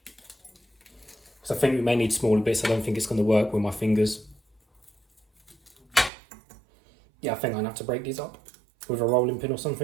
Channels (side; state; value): left; drops out; at 6.1 s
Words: So I think we may need smaller bits. I don't think it's going to work with my fingers. Yeah, I think I'm going to have to break these up with a rolling pin or